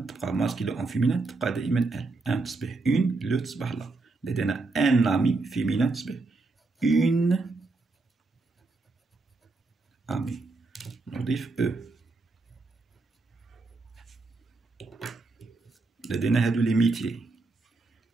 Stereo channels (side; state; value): left; quieter; 3.6 dB